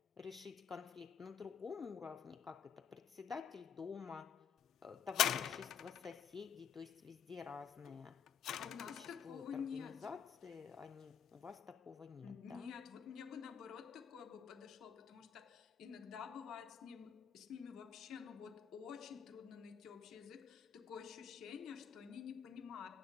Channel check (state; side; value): quieter; right; 7.8 dB